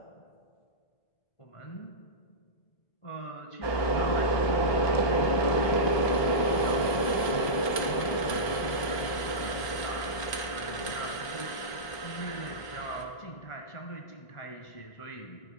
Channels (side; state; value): right; late; 1.2 ms